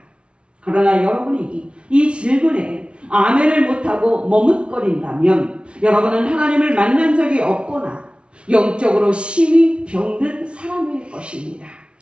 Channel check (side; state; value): left; late; 0.059 ms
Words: 그러나 여러분이 이 질문에 아멘을 못하고 머뭇거린다면 여러분은 하나님을 만난 적이 없거나 영적으로 심히 병든 사람일 것입니다.